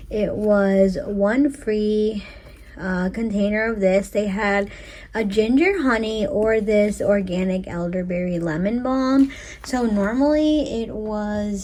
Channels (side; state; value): both; identical; correlation 1.00